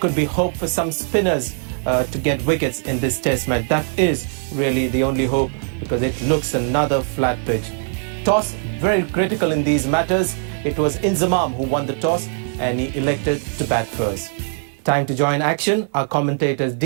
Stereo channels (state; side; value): silent; left; 65 dB below the other